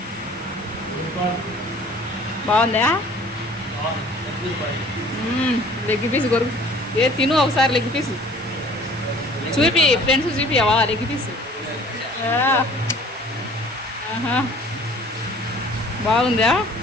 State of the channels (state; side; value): normal; both; correlation 0.51